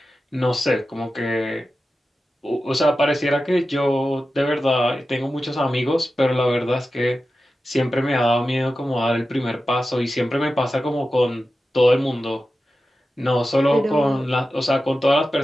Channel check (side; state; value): both; normal; correlation 0.93